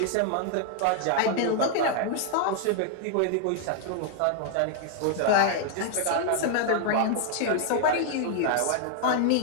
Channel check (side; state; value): both; different; correlation 0.00